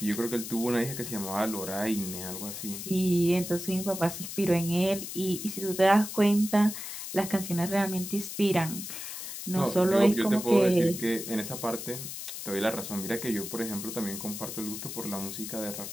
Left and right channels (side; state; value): left; noise; hiss, 8 dB below the sound